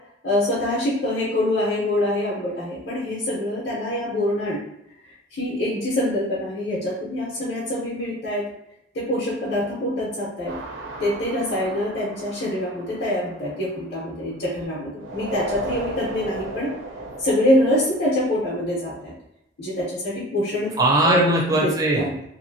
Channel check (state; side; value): normal; both; correlation 0.40